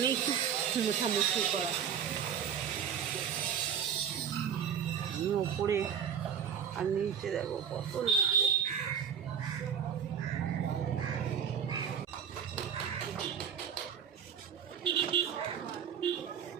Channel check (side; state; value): left; quieter; 8.0 dB